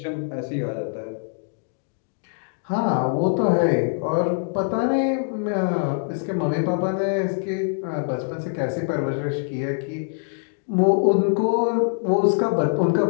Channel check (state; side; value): silent; right; digital silence